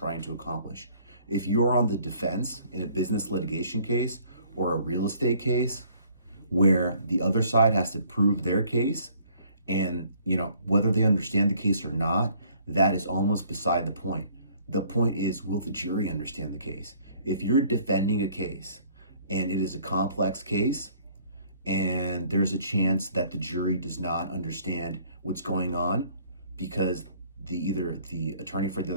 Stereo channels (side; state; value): both; inverted; correlation -0.59